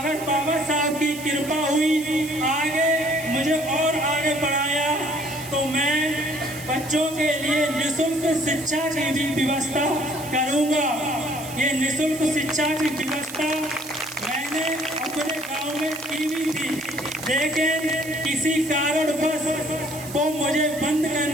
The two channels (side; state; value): right; noise; hiss, 14 dB below the sound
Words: बाबा साहब की कृपा हुई आगे मुझे और आगे बढ़ाया, तो मैं बच्चों के लिए निःशुल्क शिक्षा की भी व्यवस्था करूंगा। ये निःशुल्क शिक्षा की व्यवस्था मैंने अपने गांव में की भी थी, लेकिन किसी कारणवश वो मुझे बंद